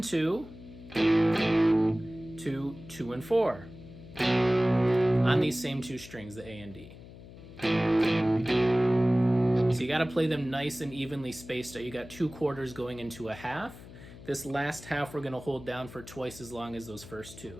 2 to 2 and 4 on these same two strings, the A and D. So you got to play them nice and evenly spaced out. You got 2 quarters going into a half. This last half we're going to hold down for twice as long as those first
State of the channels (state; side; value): noise; left; hum, 17 dB below the sound